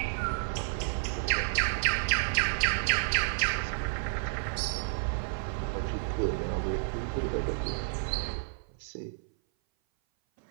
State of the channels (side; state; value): left; silent; 57 dB below the other